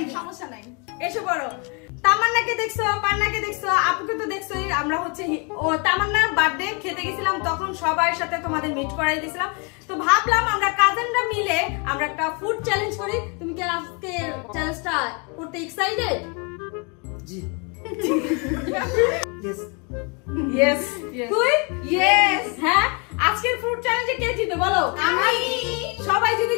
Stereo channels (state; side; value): quieter; right; 33.2 dB